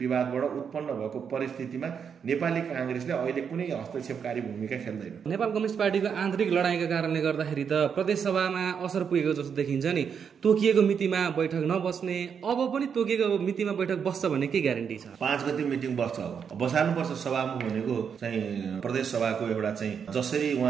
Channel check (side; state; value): left; quieter; 7.0 dB